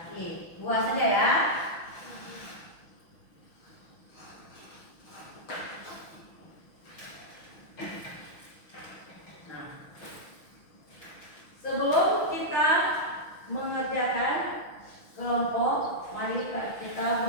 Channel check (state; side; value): late; right; 6.2 ms